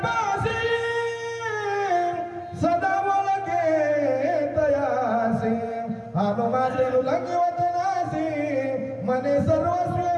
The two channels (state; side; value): identical; both; correlation 1.00